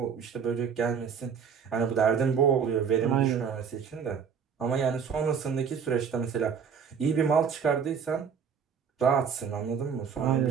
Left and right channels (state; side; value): quieter; left; 6.8 dB